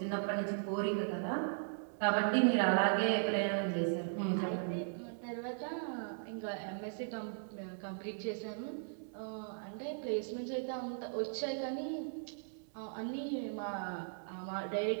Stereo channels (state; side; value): silent; left; digital silence